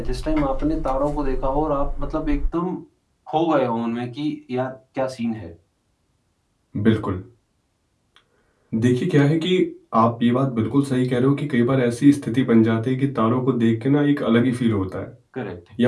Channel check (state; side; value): identical; both; correlation 1.00